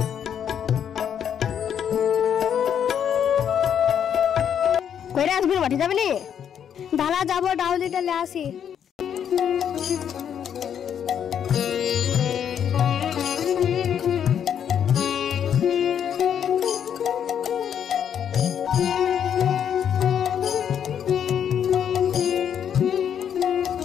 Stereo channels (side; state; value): right; quieter; 8.7 dB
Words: কইরা আজমির মাঠে যাবে নি? দাঁড়া যাবো, ডাউলিটা লে আসি।